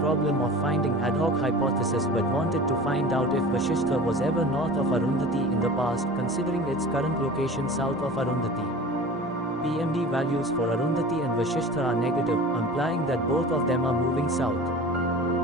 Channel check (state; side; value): normal; both; correlation 0.38